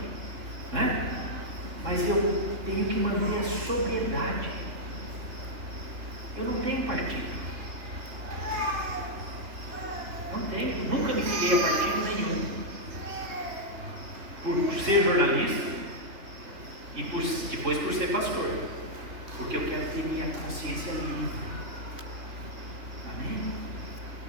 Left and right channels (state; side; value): late; left; 3.2 ms